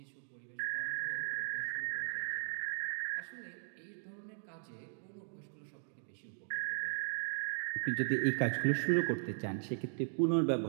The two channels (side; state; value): left; silent; digital silence